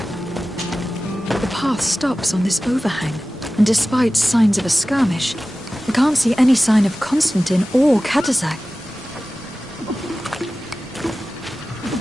The path stops on this overhang, and despite signs of a skirmish, we can't see any sign of Constantine or Katazak.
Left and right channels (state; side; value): normal; both; correlation 0.95